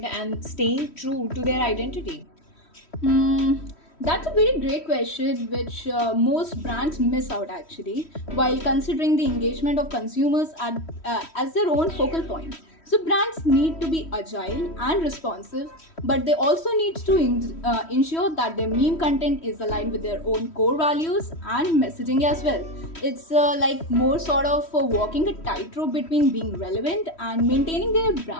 and staying true to their identity? Hmm, that's a very great question, which most brands miss out actually, while considering the engagement of consumers as their own focal point. So brands need to be agile and responsive, but they also need to ensure that their meme content is aligned with their own core values and messaging as well. It's like more sort of walking a tightrope between being relevant and maintaining their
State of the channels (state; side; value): late; right; 3.1 ms